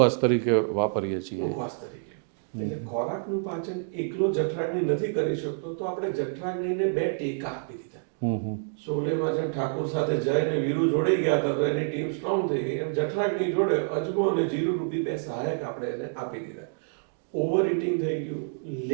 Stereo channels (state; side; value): silent; left; digital silence